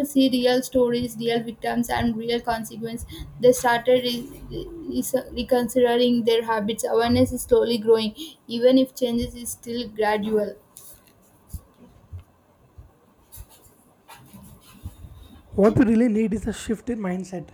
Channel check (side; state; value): both; identical; correlation 1.00